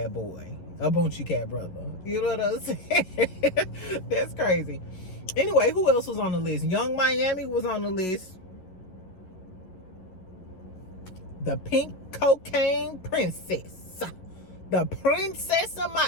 boy, a Boonchie Cat brother. You know what I'm saying? That's crazy. Anyway, who else was on the list? Young Miami was on the list. The pink cocaine princess. The princess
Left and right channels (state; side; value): late; right; 11 ms